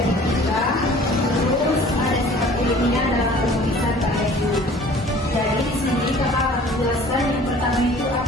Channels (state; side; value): normal; both; correlation 0.49